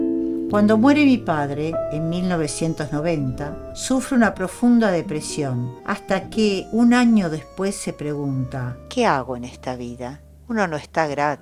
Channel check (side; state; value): both; identical; correlation 1.00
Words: Cuando muere mi padre, en 1990, sufre una profunda depresión, hasta que un año después se pregunta: ¿qué hago en esta vida? Uno no está